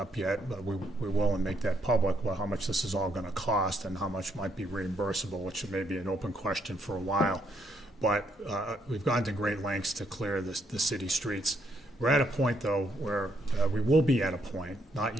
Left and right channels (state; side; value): normal; both; correlation 0.74